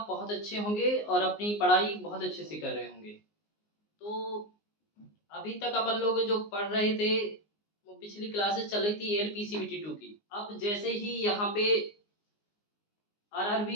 बहुत अच्छे होंगे और अपनी पढ़ाई बहुत अच्छे से कर रहे होंगे। तो अभी तक अपन लोग जो पढ़ रहे थे, वो पिछली क्लासेस चल रही थी एलपीसीबीटी 2 की। अब जैसे ही यहाँ पे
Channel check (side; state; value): right; late; 19 ms